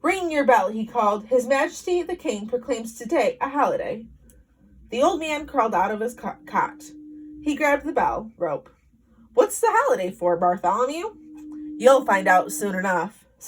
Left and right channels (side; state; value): both; identical; correlation 1.00